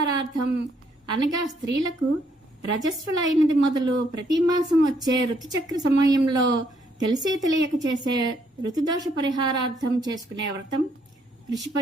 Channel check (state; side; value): normal; both; correlation 0.71